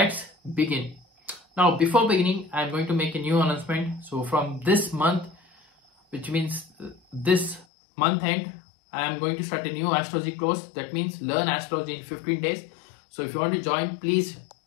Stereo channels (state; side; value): drops out; right; at 7.7 s